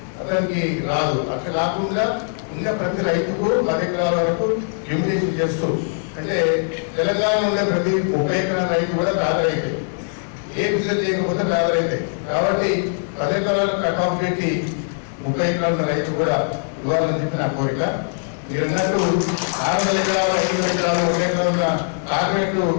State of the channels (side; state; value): right; silent; digital silence